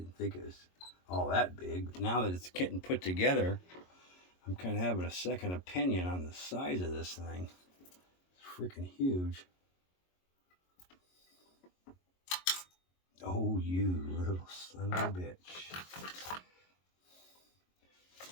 think it was all that big. But now that it's getting put together, I'm kind of having a second opinion on the size of this thing. It's freaking huge. Oh, you little son of a bitch.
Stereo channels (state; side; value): late; right; 22 ms